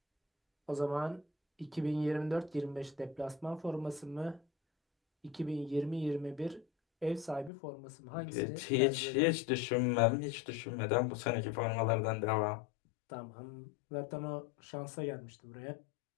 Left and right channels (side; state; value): right; drops out; at 7.5 s